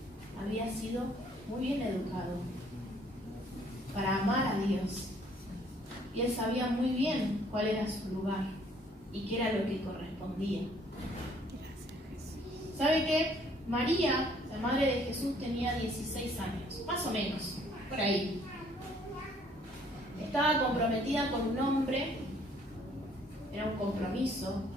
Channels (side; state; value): both; normal; correlation 0.62